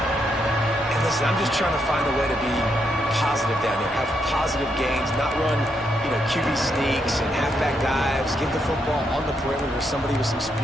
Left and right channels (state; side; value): normal; both; correlation 0.79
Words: And listen, I'm just trying to find a way to be positive down there, have positive gains, not run, QB sneaks and halfback dives, give the football on the perimeter to somebody with some